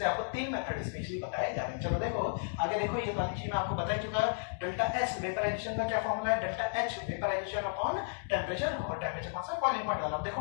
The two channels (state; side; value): silent; right; digital silence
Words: आपको 3 मेथड स्पेशली बताए जा रहे हैं। चलो देखो आगे, देखो ये वाली चीज मैं आपको बता चुका है। डेल्टा एस वेपराइजेशन का क्या फॉर्मूला है, delta H vaporisation upon temperature, और टेम्परेचर कौन सा, बॉइलिंग पॉइंट वाला। देखो